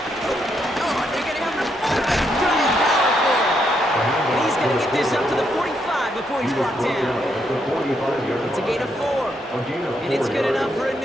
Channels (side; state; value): both; normal; correlation 0.77